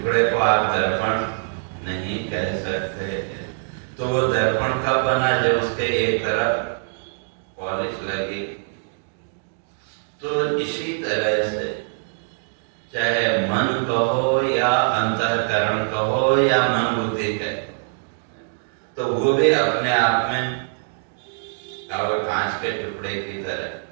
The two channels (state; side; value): silent; left; digital silence